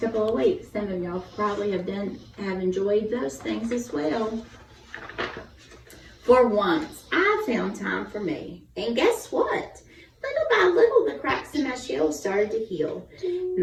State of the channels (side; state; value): both; identical; correlation 1.00